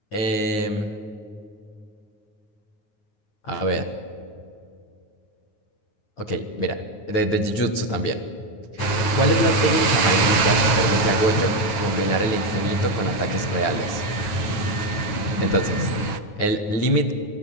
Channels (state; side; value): late; right; 9.5 ms